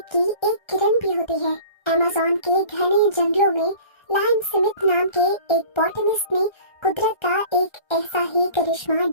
की एक किरण भी होती है। अमेज़न के घने जंगलों में लायन स्मिथ नाम के एक बॉटनिस्ट ने कुदरत का एक ऐसा ही करिश्मा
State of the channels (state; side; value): late; right; 1.3 ms